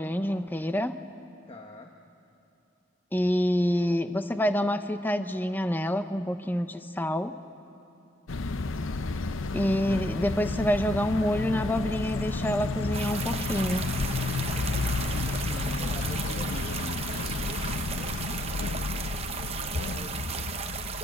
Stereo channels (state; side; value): normal; both; correlation 0.77